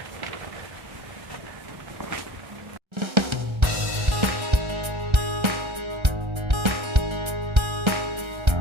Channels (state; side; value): late; left; 1.3 ms